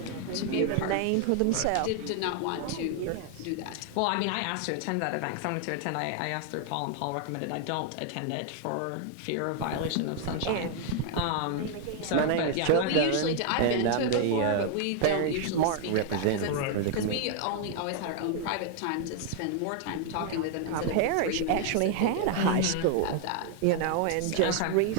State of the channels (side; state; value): both; different; correlation 0.00